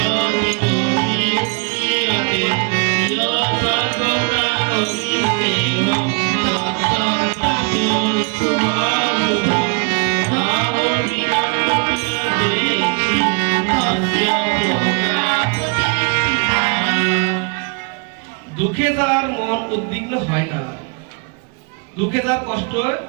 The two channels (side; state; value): left; quieter; 32.9 dB